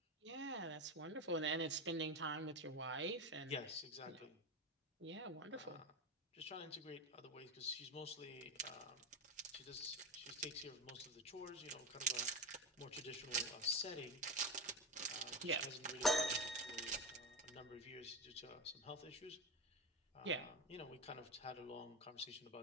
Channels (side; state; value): both; normal; correlation 0.19